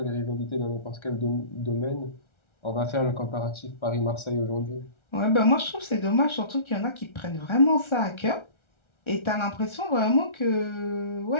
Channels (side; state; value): right; late; 1.3 ms